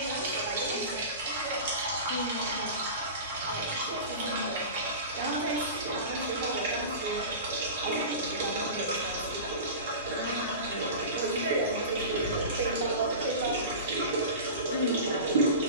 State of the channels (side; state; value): both; inverted; correlation -0.31